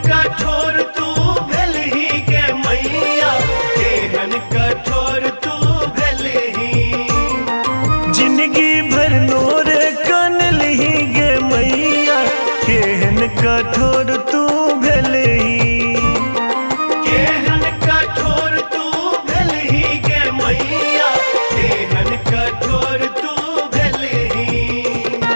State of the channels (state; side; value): inverted; both; correlation -1.00